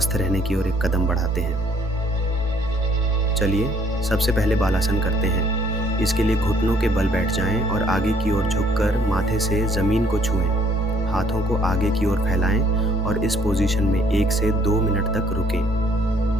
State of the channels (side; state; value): left; noise; rumble, 20 dB below the sound